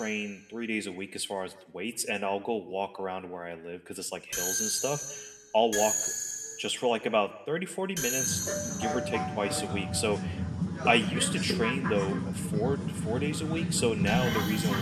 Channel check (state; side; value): identical; both; correlation 1.00